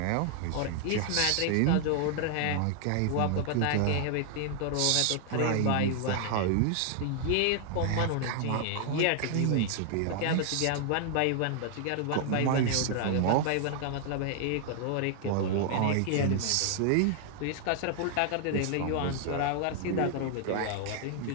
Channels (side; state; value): both; different; correlation 0.00